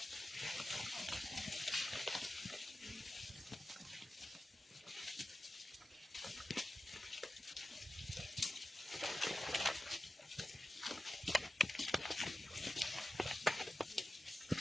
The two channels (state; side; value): normal; both; correlation 0.94